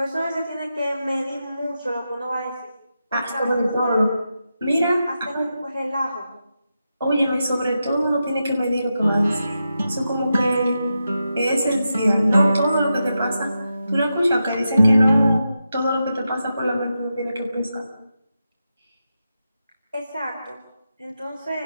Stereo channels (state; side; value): inverted; both; correlation -0.88